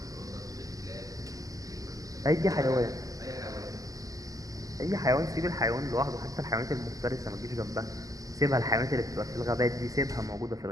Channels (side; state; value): left; late; 0.17 ms